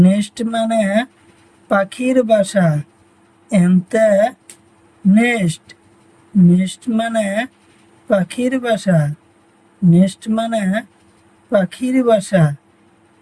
মানে পাখির বাসা। এমতে নেস্ট, নেস্ট মানে পাখির বাসা, নেস্ট মানে পাখির বাসা,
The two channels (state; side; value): identical; both; correlation 1.00